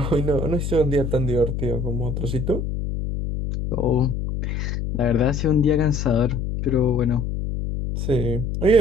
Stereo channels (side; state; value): left; noise; hum, 3 dB below the sound